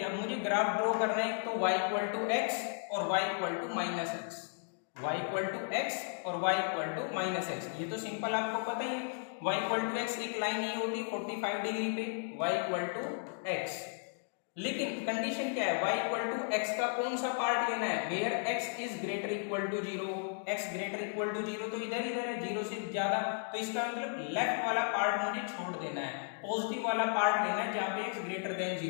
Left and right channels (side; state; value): right; silent; 55 dB below the other